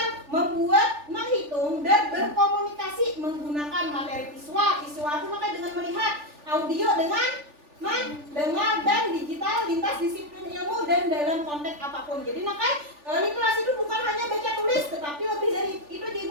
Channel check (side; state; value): left; late; 3.4 ms